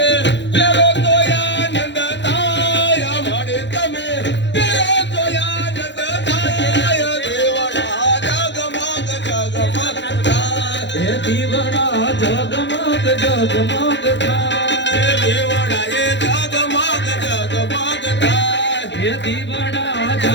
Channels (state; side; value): late; right; 0.52 ms